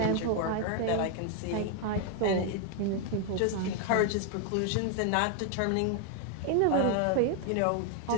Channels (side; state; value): both; different; correlation 0.01